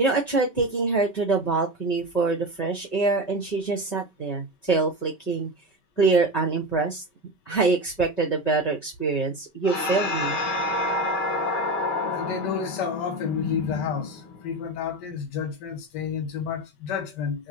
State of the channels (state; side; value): late; right; 5.2 ms